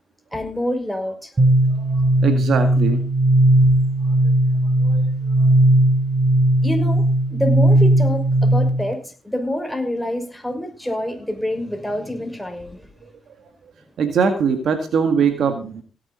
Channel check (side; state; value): both; normal; correlation 0.71